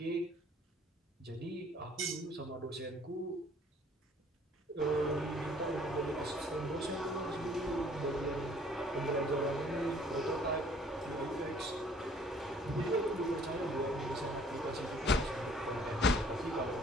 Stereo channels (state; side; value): normal; both; correlation 0.57